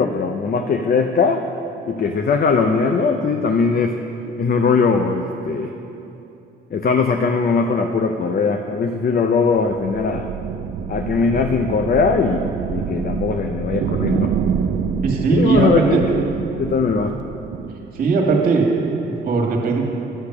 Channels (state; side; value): normal; both; correlation 0.47